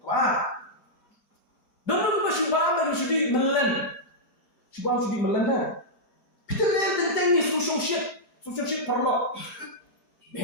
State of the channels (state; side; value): late; right; 4.6 ms